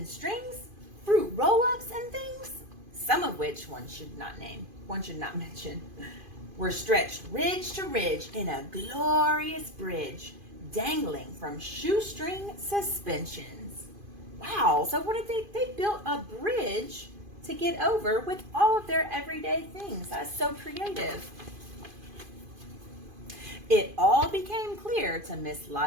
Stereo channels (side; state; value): left; late; 2.5 ms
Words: strings, fruit roll-ups and things, some of which one should not mention, were stretched ridge to ridge in a glorious bridge, dangling from shoestring suspensions. Wow, so what did they built a bridge to get over with all of their everyday things. That's so creative. It all became clear to Miss